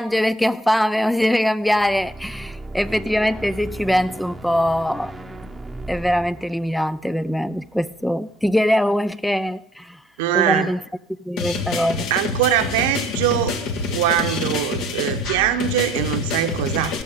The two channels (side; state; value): both; normal; correlation 0.61